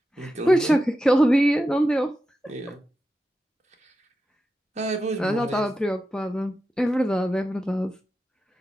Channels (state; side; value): normal; both; correlation 0.90